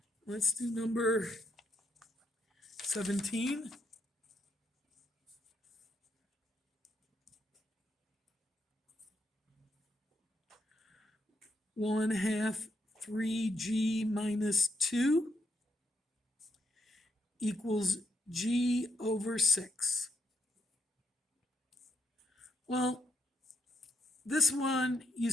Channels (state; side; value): normal; both; correlation 0.77